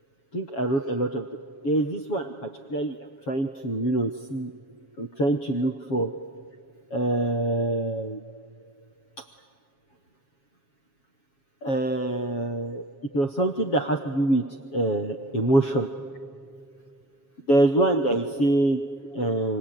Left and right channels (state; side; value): late; right; 7.3 ms